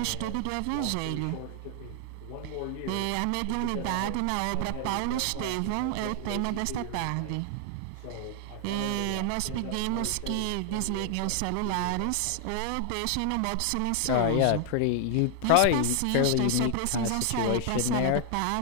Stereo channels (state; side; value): different; both; correlation 0.00